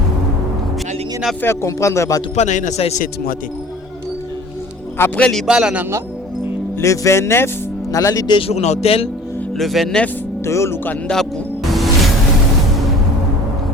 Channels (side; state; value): both; normal; correlation 0.46